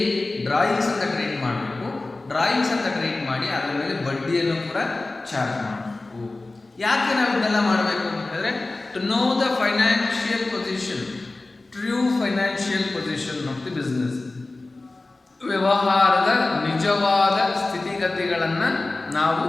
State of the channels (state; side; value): quieter; right; 3.1 dB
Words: ಡ್ರಾಯಿಂಗ್ಸ್ ಅಂತ ಟ್ರೀಟ್ ಮಾಡಬೇಕು. ಡ್ರಾಯಿಂಗ್ಸ್ ಅಂತ ಟ್ರೀಟ್ ಮಾಡಿ ಅದರ ಮೇಲೆ ಬಡ್ಡಿಯನ್ನು ಕೂಡ ಚಾರ್ಜ್ ಮಾಡಬೇಕು. ಯಾಕೆ ನಾವು ಇದನ್ನೆಲ್ಲ ಮಾಡಬೇಕು ಅಂತ ಹೇಳಿದ್ರೆ, to know the financial position, true financial position of the business, ವ್ಯವಹಾರದ ನಿಜವಾದ ಸ್ಥಿತಿಗತಿಗಳನ್ನು ನಾವು